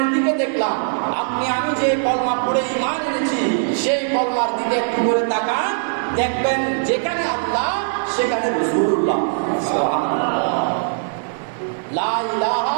দিকে দেখলাম। আপনি আমি যে কলমা পড়ে ঈমান এনেছি সেই কলমার দিকে একটু করে তাকান, দেখবেন যেখানে আল্লাহ সেখানে রাসূলুল্লাহ। সুবহানাল্লাহ। লা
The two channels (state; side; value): silent; left; 57 dB below the other